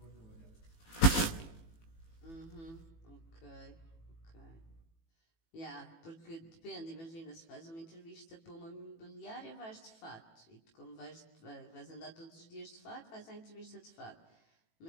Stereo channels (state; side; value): late; right; 18 ms